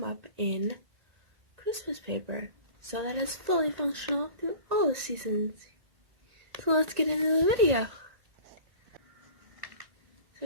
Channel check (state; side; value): late; left; 1.9 ms